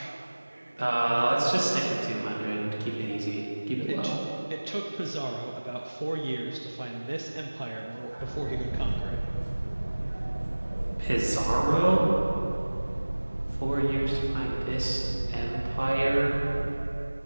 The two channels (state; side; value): inverted; both; correlation -1.00